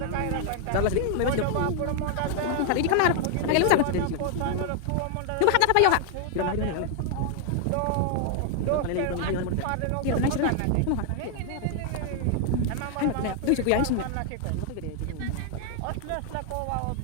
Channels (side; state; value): both; different; correlation 0.00